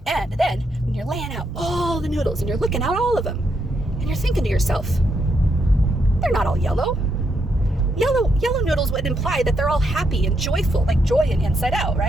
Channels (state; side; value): normal; both; correlation 0.78